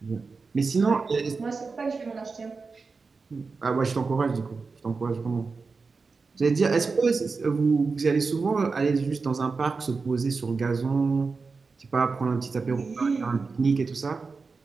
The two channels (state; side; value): quieter; left; 4.5 dB